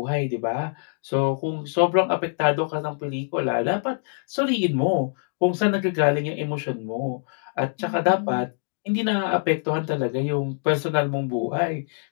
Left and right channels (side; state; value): right; silent; 62 dB below the other